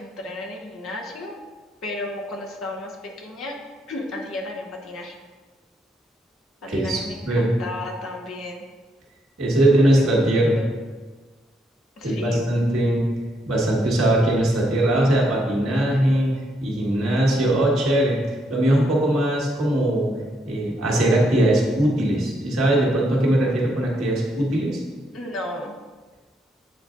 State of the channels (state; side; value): normal; both; correlation 0.76